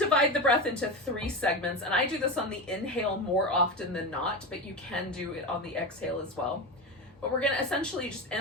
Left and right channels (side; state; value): both; normal; correlation 0.20